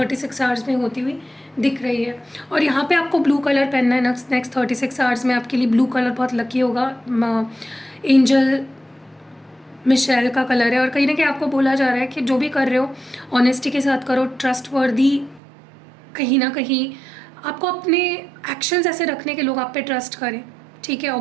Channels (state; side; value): drops out; left; at 15.4 s